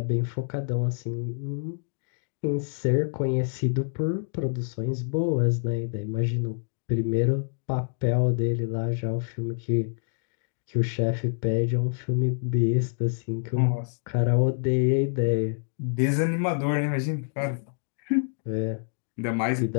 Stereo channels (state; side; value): silent; right; digital silence